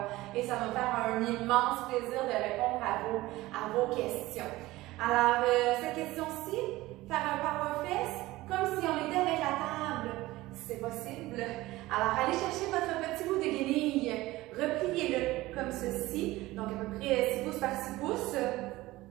et ça va me faire un immense plaisir de répondre à vos questions. Alors, cette question-ci, faire un power fest comme si on était avec la table. C'est possible. Alors, allez chercher votre petit bout de guenille, repliez-le comme ceci, donc à peu près 6 pouces par 6 pouces.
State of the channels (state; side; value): quieter; left; 18.4 dB